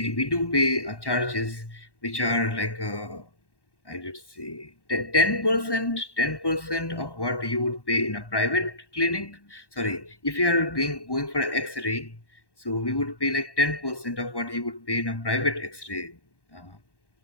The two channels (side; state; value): right; late; 1.1 ms